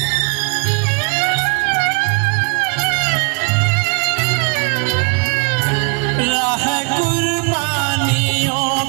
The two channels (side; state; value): left; quieter; 35.8 dB